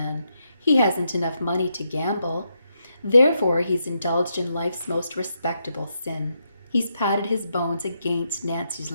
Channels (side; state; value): both; inverted; correlation -0.81